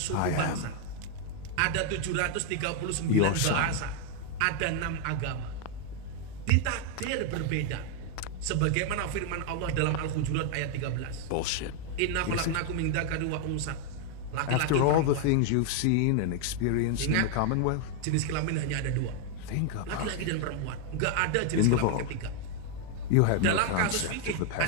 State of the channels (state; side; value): different; both; correlation 0.00